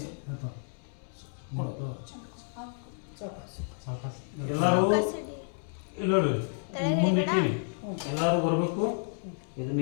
ಎಲ್ಲರೂ ಇಲ್ಲ ಮುಂದೆ ಎಲ್ಲರೂ ಬರಬೇಕು.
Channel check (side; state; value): right; silent; digital silence